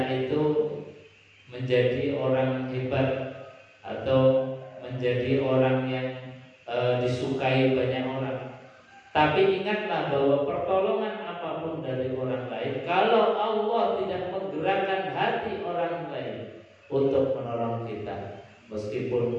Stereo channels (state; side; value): identical; both; correlation 1.00